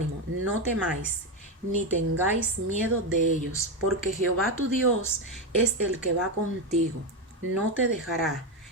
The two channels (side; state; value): both; normal; correlation 0.11